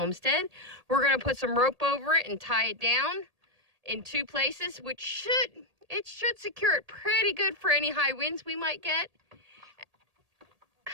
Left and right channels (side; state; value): left; late; 1.8 ms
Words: We're gonna put some rope over it and tie it down in 2 places, which should secure it pretty good for any high winds we might get.